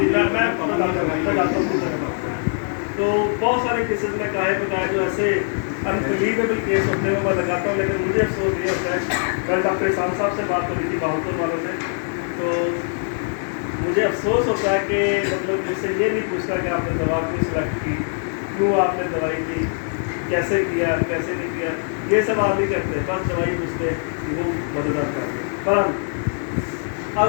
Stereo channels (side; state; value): right; silent; 57 dB below the other